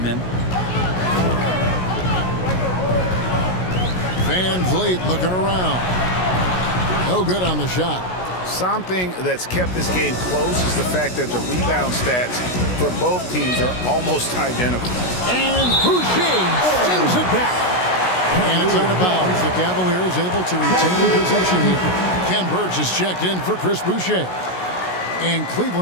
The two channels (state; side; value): late; right; 16 ms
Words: him. Van Vliet looking around. No good on the shot. Something that's kept this game close is the fact that the rebound stats for both teams are almost identical. And Boucher sends it back. And it's out of bounds. The Cavaliers able to retain possession here. Ken Burge is checked in for Chris Boucher. And